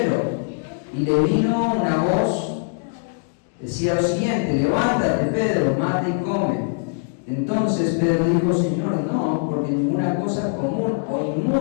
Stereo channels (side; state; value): right; silent; digital silence